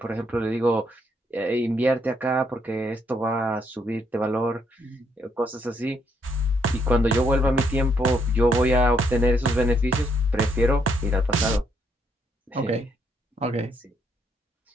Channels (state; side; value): normal; both; correlation 0.73